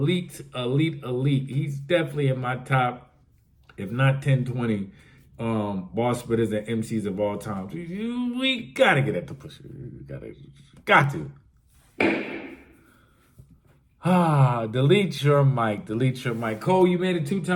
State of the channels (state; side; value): identical; both; correlation 1.00